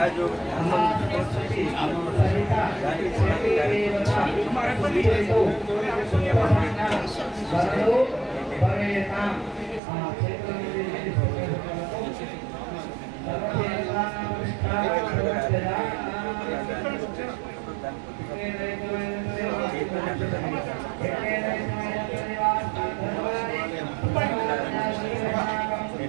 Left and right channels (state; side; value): drops out; left; at 9.8 s